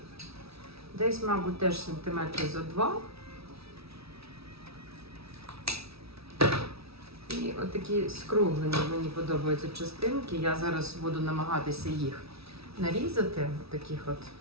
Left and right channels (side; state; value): left; late; 0.77 ms